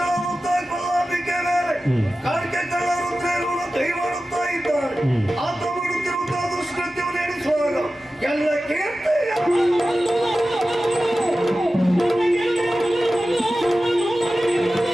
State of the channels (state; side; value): normal; both; correlation 0.94